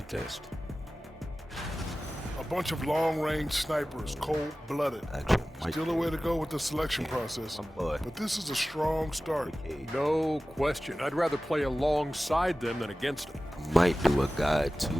A bunch of long-range snipers, cold-blooded. Still a way to go with the selection process, but this is a strong start. No question. I'd rather play alongside them than against them. Might do a guide too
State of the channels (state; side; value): normal; both; correlation 0.96